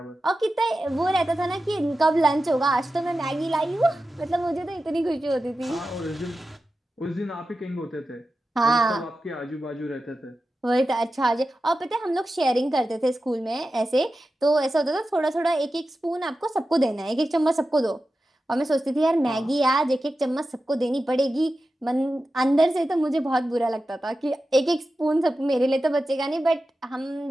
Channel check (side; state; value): both; normal; correlation 0.93